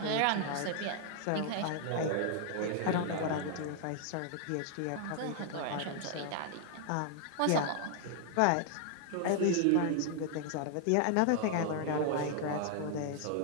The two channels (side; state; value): both; different; correlation 0.00